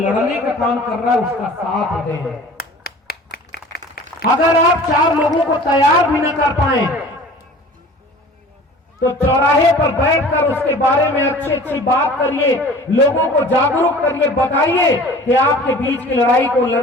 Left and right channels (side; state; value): both; normal; correlation 0.44